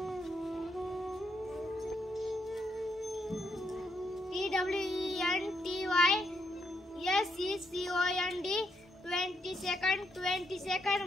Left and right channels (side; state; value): both; normal; correlation 0.78